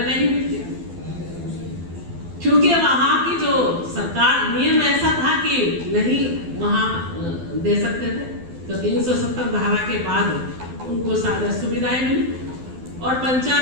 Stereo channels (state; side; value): late; left; 12 ms